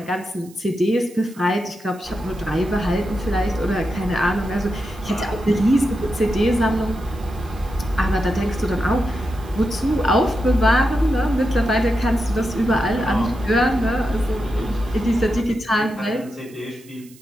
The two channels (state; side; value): noise; right; hiss, 25 dB below the sound